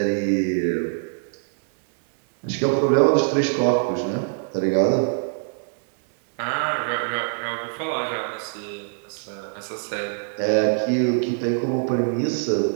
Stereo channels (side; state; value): left; silent; digital silence